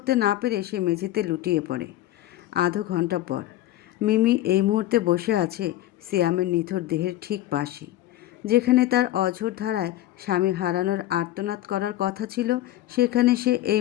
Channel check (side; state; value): right; quieter; 14.3 dB